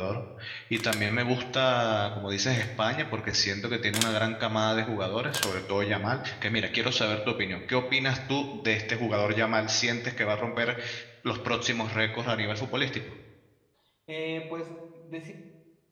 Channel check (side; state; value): both; identical; correlation 1.00